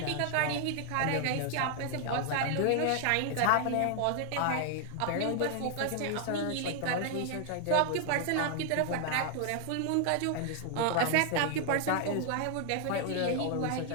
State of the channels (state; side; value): different; both; correlation 0.00